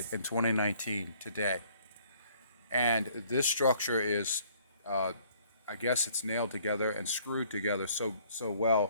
in 2019 today. And this structure is, I guess it's nailed together and screwed together so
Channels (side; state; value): both; inverted; correlation -0.60